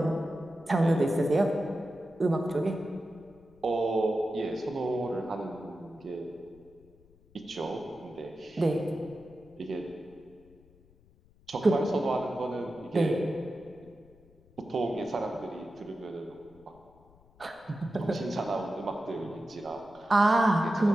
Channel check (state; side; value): noise; left; rumble, 28 dB below the sound